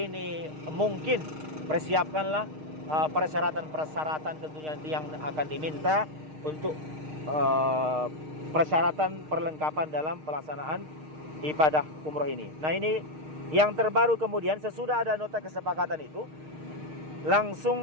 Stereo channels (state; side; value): late; left; 6.5 ms